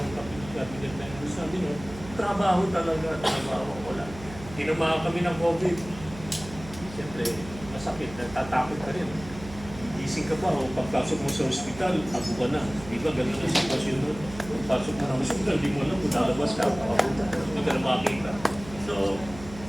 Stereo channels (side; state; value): right; noise; hum, 15 dB below the sound